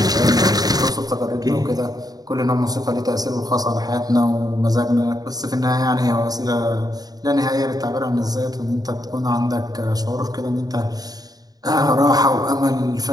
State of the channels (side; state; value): left; late; 0.18 ms